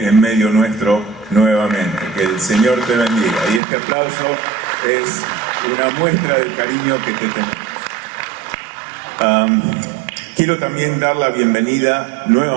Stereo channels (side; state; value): left; drops out; at 3.6 s